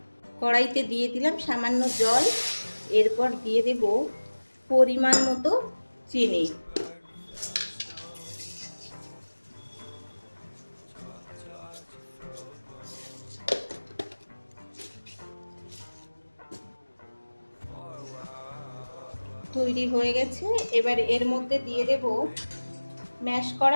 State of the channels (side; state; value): both; inverted; correlation -1.00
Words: কড়াইতে দিয়ে দিলাম সামান্য জল, এরপর দিয়ে দেব পরিমাণ মতো চিনি। তৈরি হয়ে গেছে। এবার এর মধ্যে দিয়ে দেব ম্যাশ